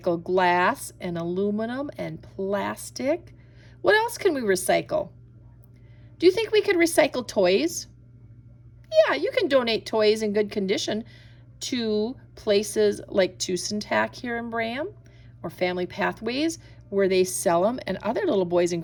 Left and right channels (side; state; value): both; identical; correlation 1.00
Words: glass and aluminum and plastic. What else can we recycle? Do you think we could recycle toys? Yeah, you can donate toys in good condition to places like Tucson-Tac here in Bram or Family Pathways where they sell them and other little boys and